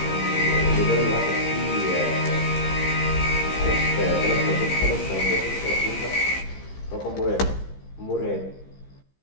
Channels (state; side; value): late; right; 15 ms